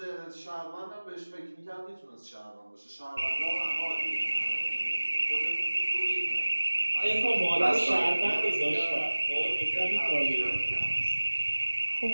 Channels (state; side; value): inverted; both; correlation -1.00